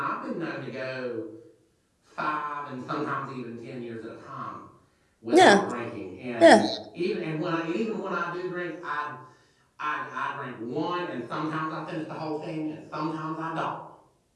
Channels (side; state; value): both; identical; correlation 1.00